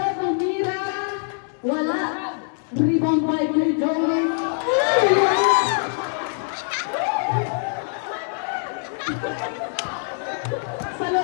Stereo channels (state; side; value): silent; right; 63 dB below the other